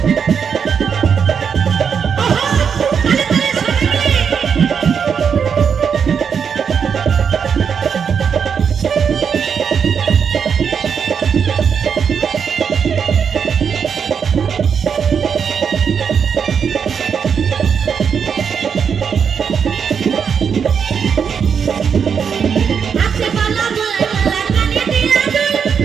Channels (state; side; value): quieter; left; 6.9 dB